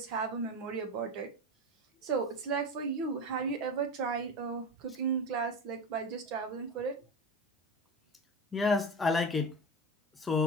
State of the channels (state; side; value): normal; both; correlation 0.25